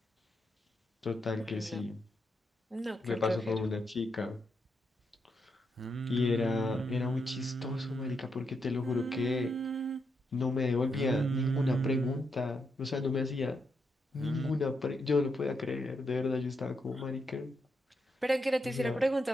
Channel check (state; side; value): normal; both; correlation 0.81